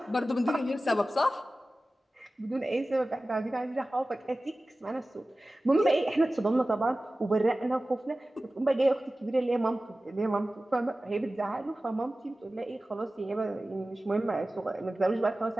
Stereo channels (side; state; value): both; normal; correlation 0.96